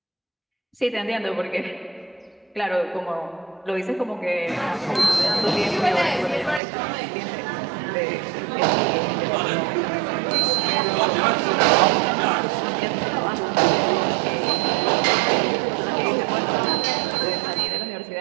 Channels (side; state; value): left; drops out; at 6.6 s